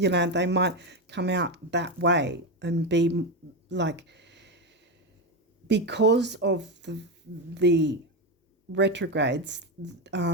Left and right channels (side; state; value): both; normal; correlation 0.12